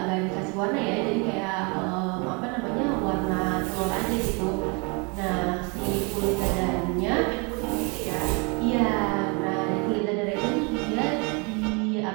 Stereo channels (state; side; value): quieter; left; 31.7 dB